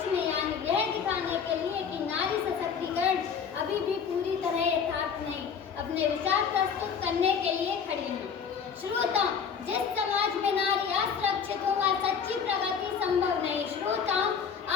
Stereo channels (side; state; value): right; quieter; 6.7 dB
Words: में, यानी यह दिखाने के लिए कि नारी सशक्तिकरण अभी भी पूरी तरह यथार्थ नहीं, अपने विचार प्रस्तुत करने के लिए खड़ी हूँ। श्रोताओं, जिस समाज में नारी असुरक्षित हो वहाँ सच्ची प्रगति संभव नहीं। श्रोताओं,